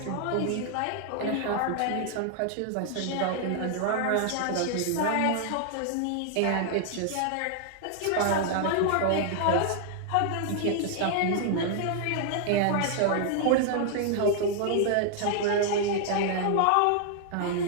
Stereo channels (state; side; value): different; both; correlation 0.00